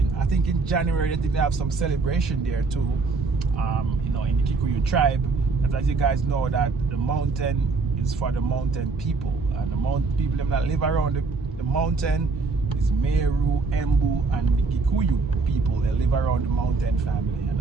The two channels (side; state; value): left; quieter; 4.2 dB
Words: I think in January they have some celebration there too, in the Kikuyu tribe. Because as you guys know that the mountain is for the mountain people, and the mountain people that live around the mountain is Meru, Embu, and the Kikuyu people. They live around the mountain family, and